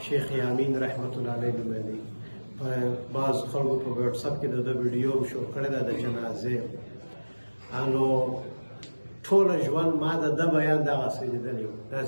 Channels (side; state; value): both; inverted; correlation -1.00